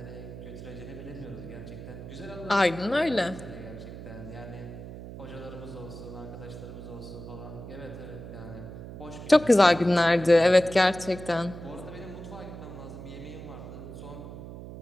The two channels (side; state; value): right; noise; hum, 12 dB below the sound